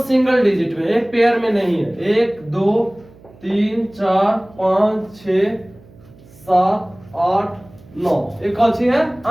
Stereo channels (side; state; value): right; noise; hum, 24 dB below the sound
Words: डिजिट में, एक पेयर में नहीं है। 1, 2, 3, 4, 5, 6, 7, 8, 9, एक कौन सी है?